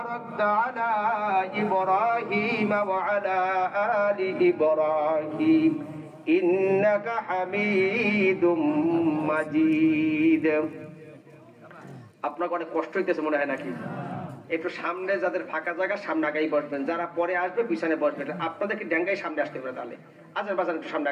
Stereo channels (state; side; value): identical; both; correlation 1.00